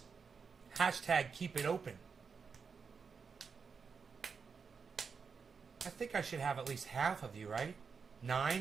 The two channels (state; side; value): quieter; left; 5.6 dB